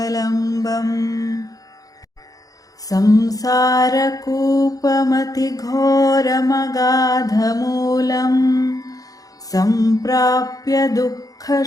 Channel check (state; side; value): late; right; 0.17 ms